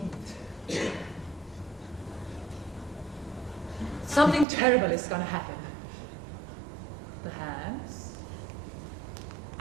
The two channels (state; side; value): drops out; left; at 4.5 s